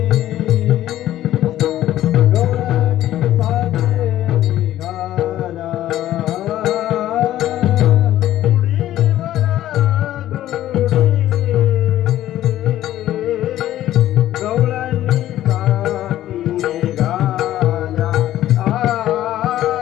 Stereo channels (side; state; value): right; quieter; 13.4 dB